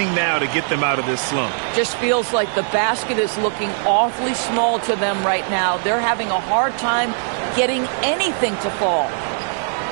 now to get them out of this slump. Just feels like the basket is looking awfully small to them right now. They're having a hard time getting anything to fall.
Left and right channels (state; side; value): silent; left; 66 dB below the other